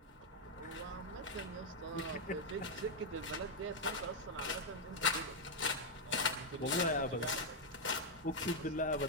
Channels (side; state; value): both; normal; correlation 0.00